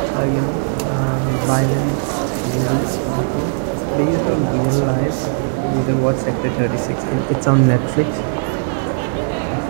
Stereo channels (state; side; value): silent; left; 67 dB below the other